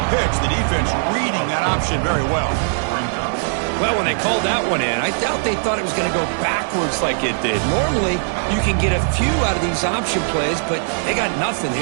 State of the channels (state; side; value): silent; left; 63 dB below the other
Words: pitch. The defense reading that option very well. Well, when they called that one in, I doubt they thought it was going to go backwards like it did. Normally, you can get a few out of these option plays, but they got nothing